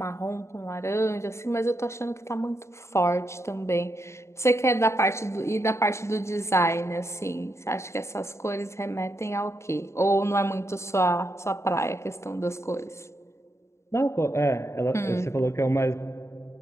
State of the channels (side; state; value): right; late; 0.13 ms